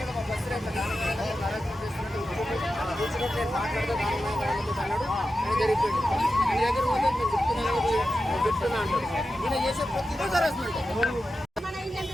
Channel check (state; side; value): normal; both; correlation 0.91